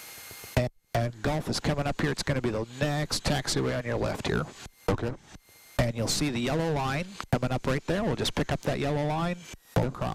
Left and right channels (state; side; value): identical; both; correlation 1.00